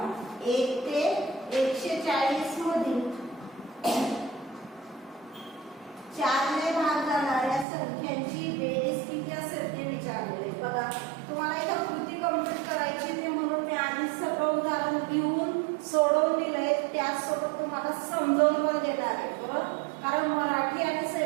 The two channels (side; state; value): left; drops out; at 7.7 s